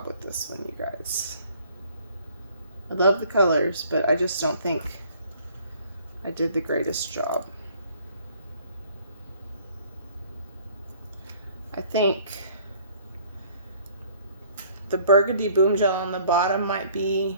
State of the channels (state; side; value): inverted; both; correlation -0.57